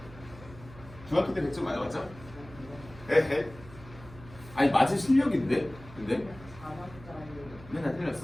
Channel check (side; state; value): right; noise; hum, 18 dB below the sound